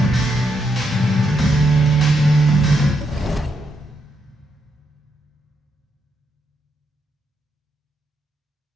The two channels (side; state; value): both; normal; correlation 0.79